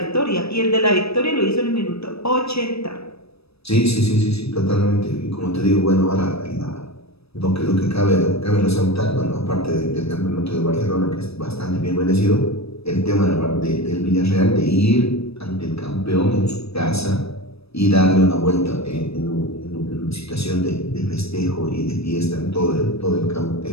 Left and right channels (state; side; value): late; right; 0.78 ms